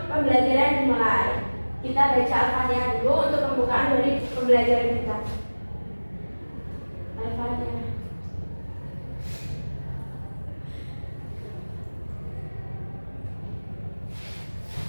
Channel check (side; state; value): both; inverted; correlation -1.00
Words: pembelajaran dimulai. Kita baca Al-Fatihah dulu untuk pembukaan dari pembelajaran kita. Al-Fatihah.